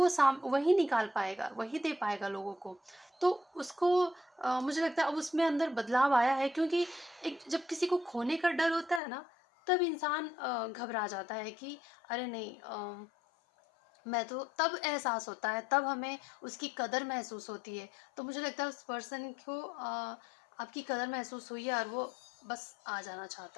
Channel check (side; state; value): right; drops out; at 9.0 s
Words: वही निकाल पाएगा, वही दे पाएगा लोगों को। तो उसको मुझे लगता है अब उसमें अंदर बदलाव आया है, क्योंकि एक जब किसी को खोने का डर होता है ना, तब इंसान घबरा जाता है कि अरे नहीं, मैं तो तब एहसास होता है, तब हमें उसकी कदर महसूस होती है। तो मुझे लगता है उस पर्सन को आपकी कदर महसूस हुई है, और वो बस आ जाना